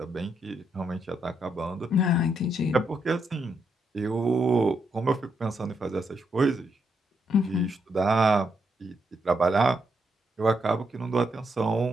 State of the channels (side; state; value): both; normal; correlation 0.79